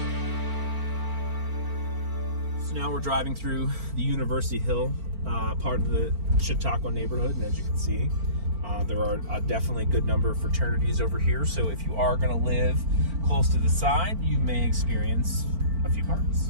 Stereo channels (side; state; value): left; late; 4.4 ms